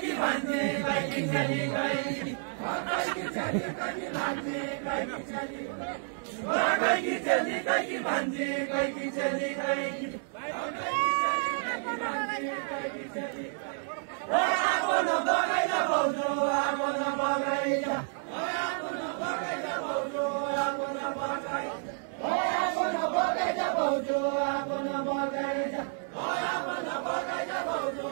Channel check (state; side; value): silent; left; digital silence